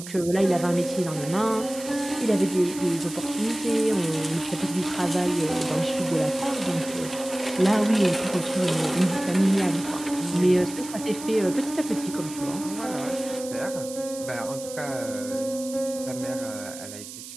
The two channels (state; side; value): noise; right; hiss, 13 dB below the sound